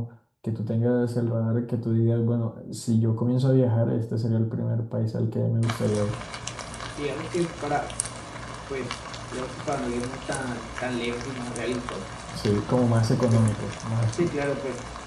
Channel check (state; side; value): identical; both; correlation 1.00